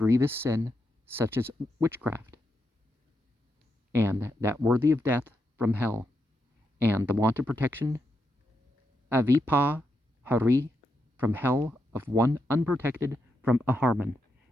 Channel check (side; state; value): both; normal; correlation 0.84